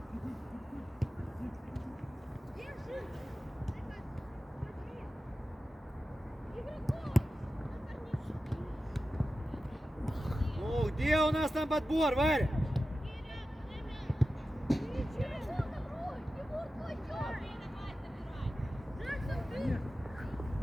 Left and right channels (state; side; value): normal; both; correlation 0.93